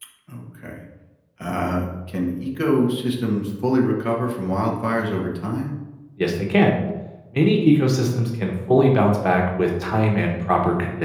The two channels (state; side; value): identical; both; correlation 1.00